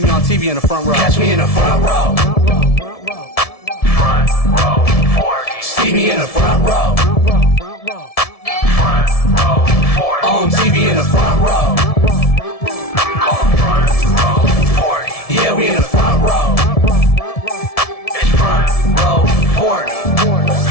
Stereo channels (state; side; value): late; right; 1.7 ms